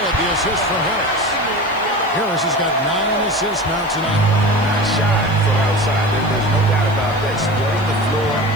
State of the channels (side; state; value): left; noise; hiss, 26 dB below the sound